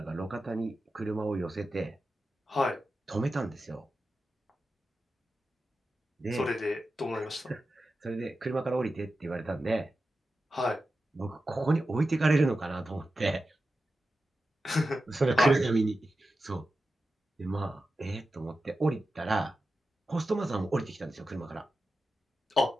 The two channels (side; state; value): both; normal; correlation 0.92